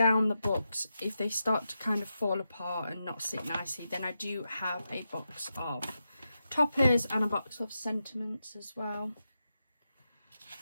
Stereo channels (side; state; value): both; inverted; correlation -0.88